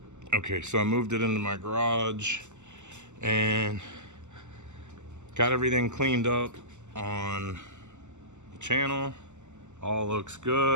Okay, so I moved it into my garage and got everything cleaned up on the channel. All looks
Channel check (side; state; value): left; late; 0.84 ms